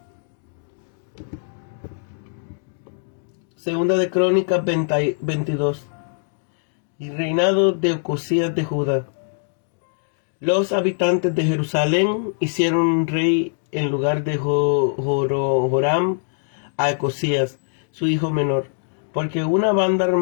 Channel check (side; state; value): right; silent; digital silence